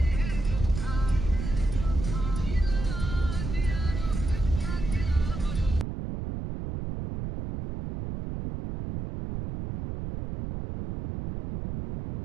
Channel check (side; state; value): right; noise; rumble, 5 dB below the sound